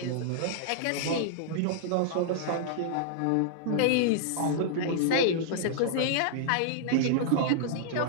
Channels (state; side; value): different; both; correlation -0.01